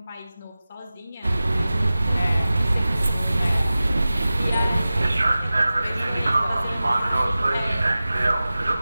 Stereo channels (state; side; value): inverted; both; correlation -0.96